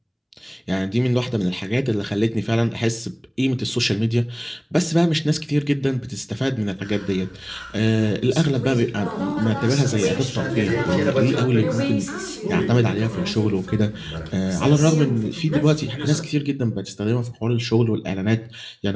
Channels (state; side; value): identical; both; correlation 1.00